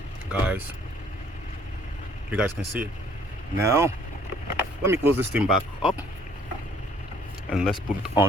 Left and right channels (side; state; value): both; normal; correlation 0.60